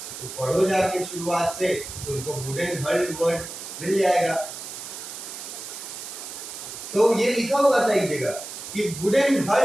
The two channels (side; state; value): right; noise; hiss, 10 dB below the sound